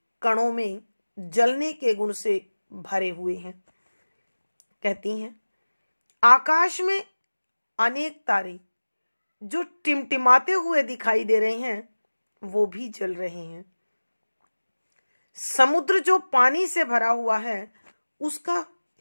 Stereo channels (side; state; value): both; inverted; correlation -1.00